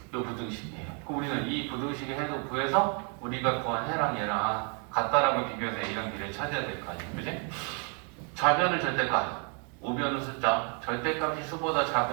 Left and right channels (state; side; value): quieter; left; 38.9 dB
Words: 부등식이에요. 그럼 우리는 이 부등식의 해도 구해서 우리가 구한 해랑 얘랑 같다라고 비교해서 A랑 B를 찾아야 될 거 아니에요, 그지? 좌변은 절대값, 우변은 숫자. 절대값이 수보다